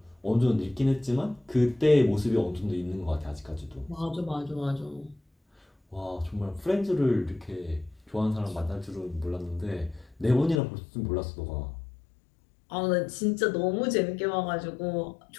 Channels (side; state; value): right; drops out; at 10.6 s